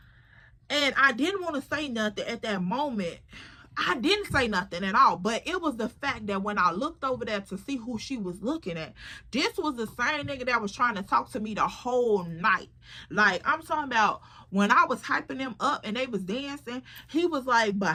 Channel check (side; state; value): both; identical; correlation 1.00